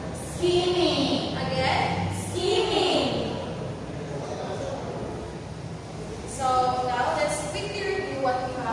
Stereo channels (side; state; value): both; identical; correlation 1.00